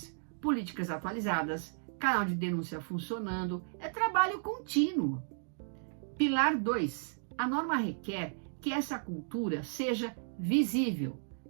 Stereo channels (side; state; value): left; silent; digital silence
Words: políticas atualizadas, canal de denúncia funcionando, é trabalho contínuo. Pilar 2. A norma requer que essa cultura seja visível,